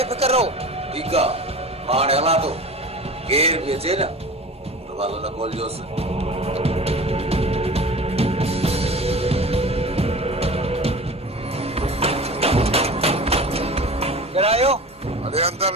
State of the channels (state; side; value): normal; both; correlation 0.36